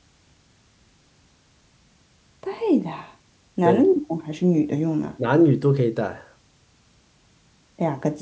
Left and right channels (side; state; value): both; identical; correlation 1.00